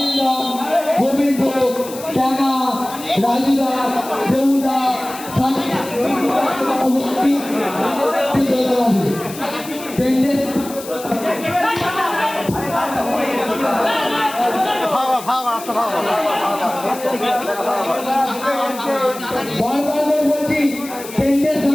গোবিন্দ ট্যাঙা রাজুদা দেবুদা বলছি টেন্ডের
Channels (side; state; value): left; noise; hiss, 14 dB below the sound